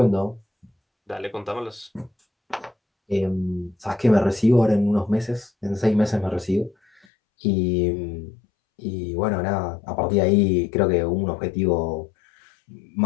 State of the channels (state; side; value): drops out; right; at 7.1 s